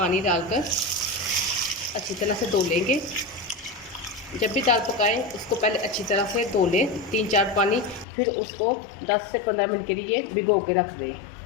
डालकर अच्छी तरह से धो लेंगे। जब भी दाल पकाएं उसको पहले अच्छी तरह से धो लें 3-4 पानी, फिर उसको 10 से 15 मिनट के लिए भिगो के रख दें।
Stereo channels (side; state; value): right; drops out; at 8.1 s